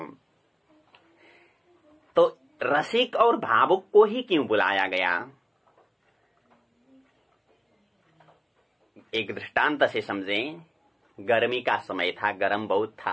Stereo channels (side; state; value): both; identical; correlation 1.00